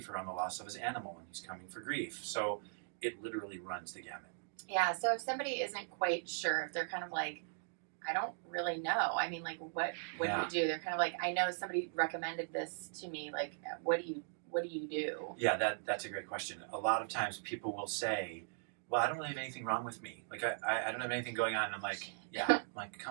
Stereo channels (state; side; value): silent; left; digital silence